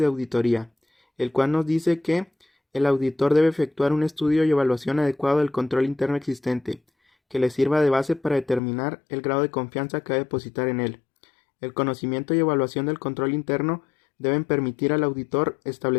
auditoría, el cual nos dice que el auditor debe efectuar un estudio y evaluación adecuado del control interno existente, que le sirva de base para determinar el grado de confianza que va a depositar en él. El conocimiento y evaluación del control interno deben permitir al auditor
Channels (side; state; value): right; drops out; at 8.6 s